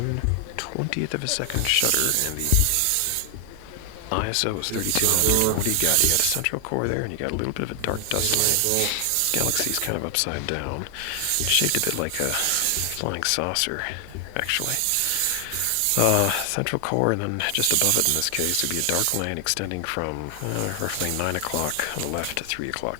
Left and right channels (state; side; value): different; both; correlation 0.00